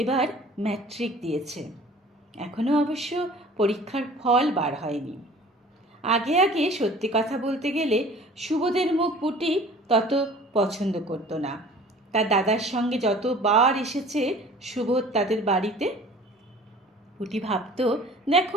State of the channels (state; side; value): normal; both; correlation 0.47